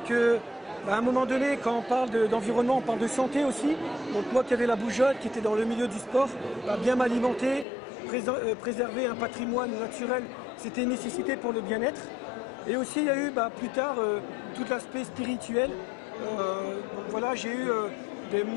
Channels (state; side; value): drops out; right; at 7.7 s